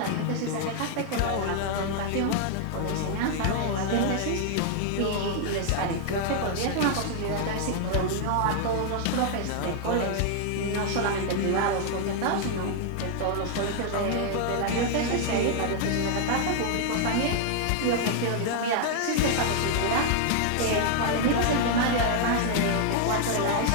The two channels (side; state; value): both; different; correlation 0.00